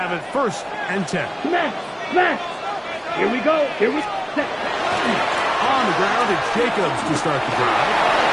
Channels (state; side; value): identical; both; correlation 1.00